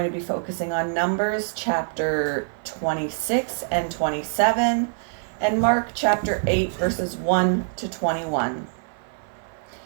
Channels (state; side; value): silent; left; 55 dB below the other